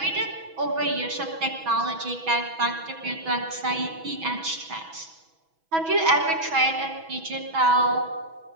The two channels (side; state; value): left; late; 6.1 ms